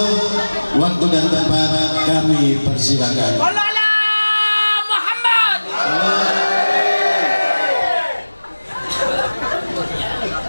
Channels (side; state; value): both; inverted; correlation -1.00